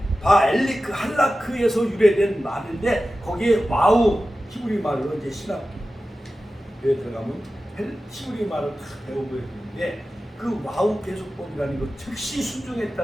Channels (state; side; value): normal; both; correlation 0.94